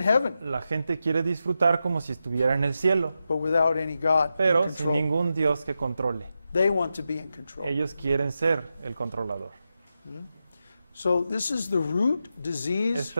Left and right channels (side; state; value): both; inverted; correlation -0.88